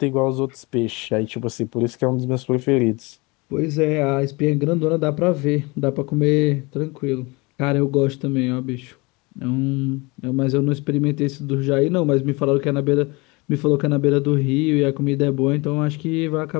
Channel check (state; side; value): quieter; right; 25.9 dB